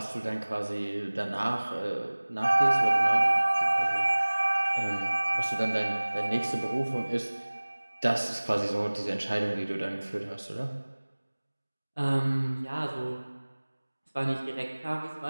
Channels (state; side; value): inverted; both; correlation -1.00